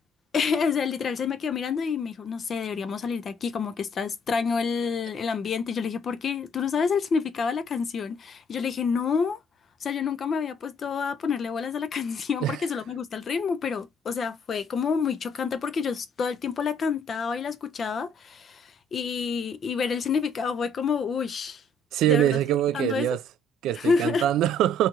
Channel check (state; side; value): normal; both; correlation 0.63